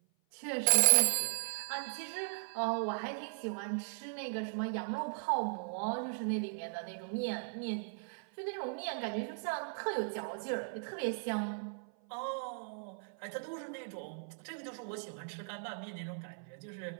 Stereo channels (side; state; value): left; silent; 53 dB below the other